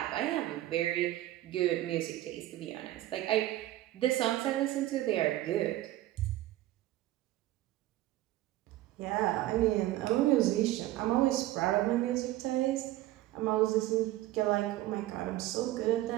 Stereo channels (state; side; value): quieter; left; 15.5 dB